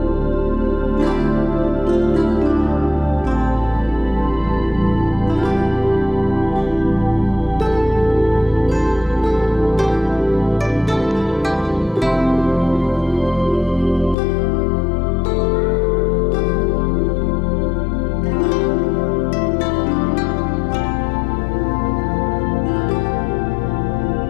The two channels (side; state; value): right; drops out; at 14.2 s